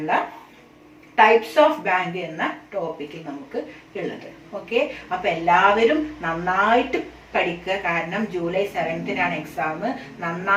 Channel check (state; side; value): identical; both; correlation 1.00